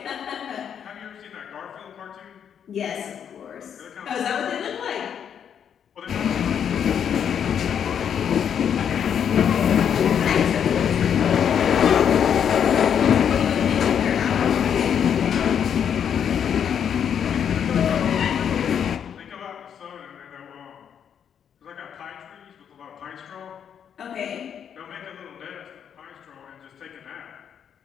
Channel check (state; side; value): quieter; right; 8.3 dB